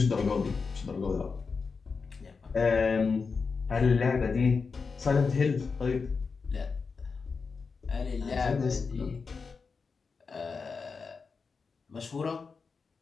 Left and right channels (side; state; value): right; quieter; 4.9 dB